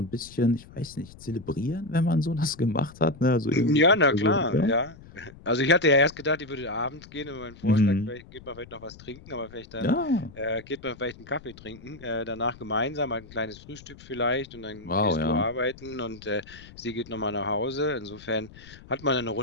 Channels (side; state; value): left; noise; rumble, 20 dB below the sound